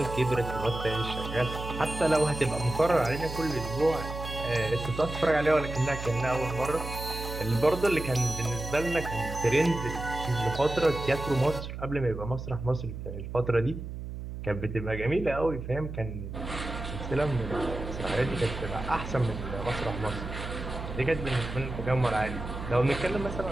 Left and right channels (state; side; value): noise; right; hum, 8 dB below the sound